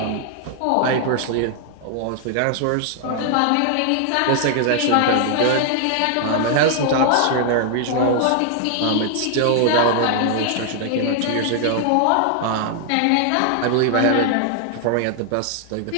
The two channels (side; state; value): both; different; correlation 0.00